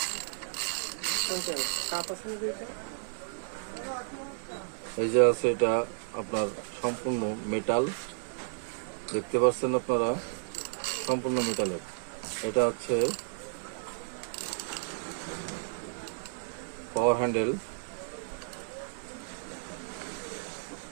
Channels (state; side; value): silent; left; digital silence